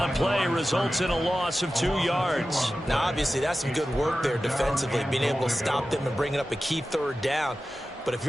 play results in a loss of 2 yards. Now, obviously, that's some good work there defensively, being able to stop them and bringing up a key third down. But if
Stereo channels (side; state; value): both; normal; correlation 0.94